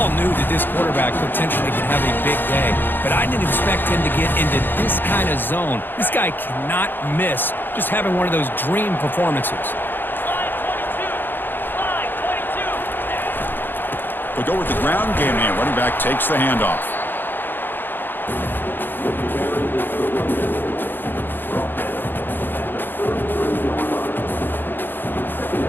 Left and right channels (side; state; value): right; late; 0.095 ms